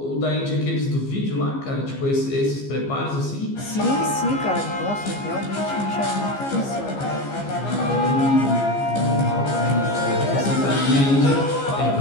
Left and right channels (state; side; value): late; right; 15 ms